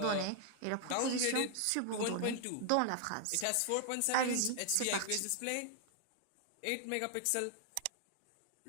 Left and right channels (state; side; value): different; both; correlation 0.00